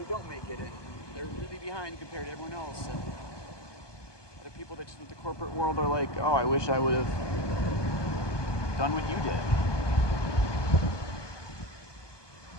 don't make it, and they're really behind compared to everyone else. And other people that just with the corporate world are like, oh, I wish I would have done what you did.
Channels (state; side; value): late; right; 1.2 ms